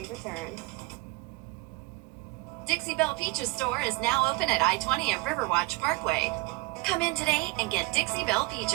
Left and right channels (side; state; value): left; quieter; 23.9 dB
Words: return. Dixie Belle Peaches store is now open at I-20 and Riverwatch Parkway. Come in today and get Dixie Belle